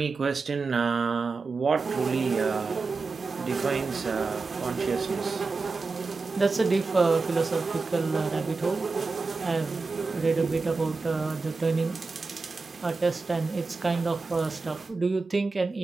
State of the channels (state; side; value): quieter; left; 4.1 dB